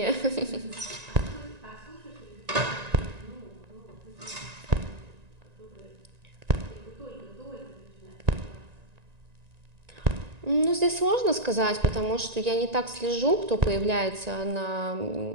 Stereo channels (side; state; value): left; late; 1.9 ms